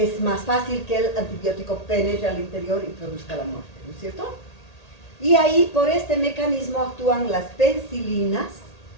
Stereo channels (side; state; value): right; late; 1.8 ms